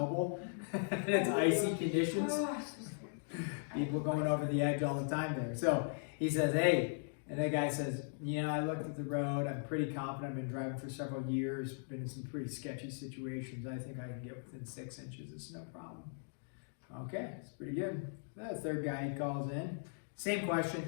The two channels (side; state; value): right; silent; digital silence